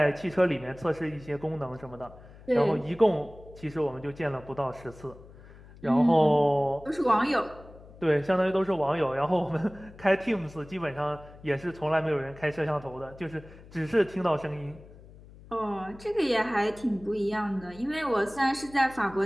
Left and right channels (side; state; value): left; noise; hum, 20 dB below the sound